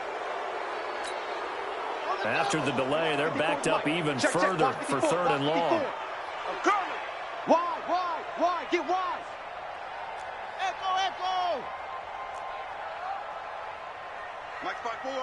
After the delay, they're backed up even further for 3rd and long. Wide. Get wide. Echo. Mike's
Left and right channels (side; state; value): both; identical; correlation 1.00